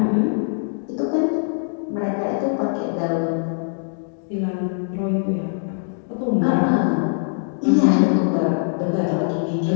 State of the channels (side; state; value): right; silent; digital silence